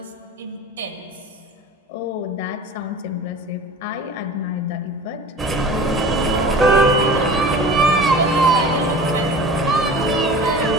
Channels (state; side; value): normal; both; correlation 0.39